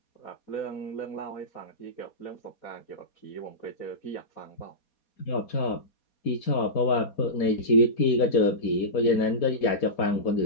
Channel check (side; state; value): right; late; 4.2 ms